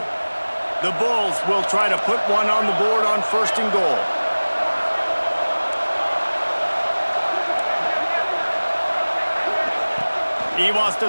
The Bulls will try to put one on the board on first and goal. He wants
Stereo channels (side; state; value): both; inverted; correlation -1.00